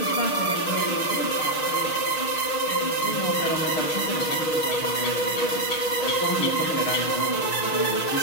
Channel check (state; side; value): late; right; 6.4 ms